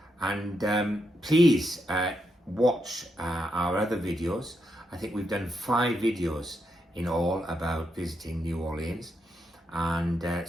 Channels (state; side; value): normal; both; correlation 0.82